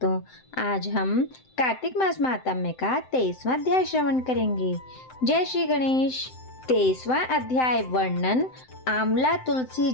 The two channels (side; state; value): right; late; 7.8 ms